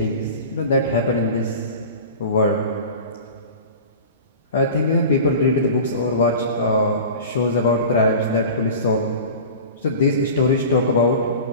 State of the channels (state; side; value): inverted; both; correlation -0.36